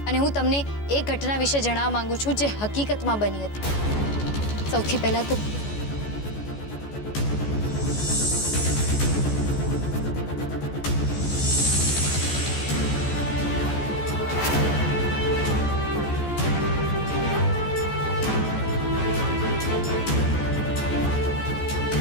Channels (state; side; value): late; right; 14 ms